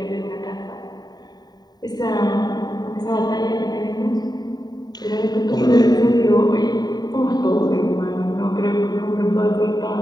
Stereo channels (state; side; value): late; right; 0.20 ms